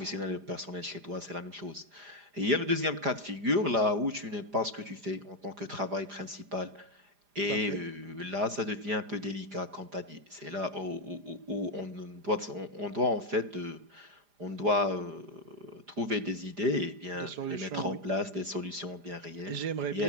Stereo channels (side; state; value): left; late; 4.9 ms